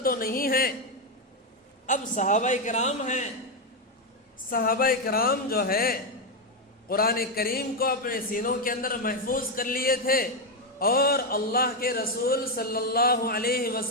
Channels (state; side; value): normal; both; correlation 0.05